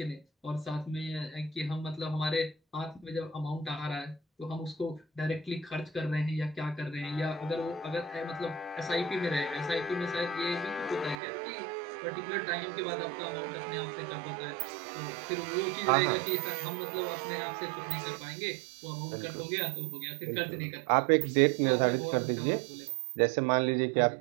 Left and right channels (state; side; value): drops out; left; at 11.2 s